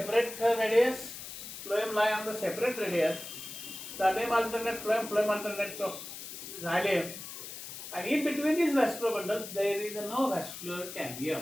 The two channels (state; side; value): noise; left; hiss, 10 dB below the sound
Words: radius. Phloem lie on the separate radius. Xylem alternate phloem, phloem alternate xylem. And in between these vascular bundles, there is no vascular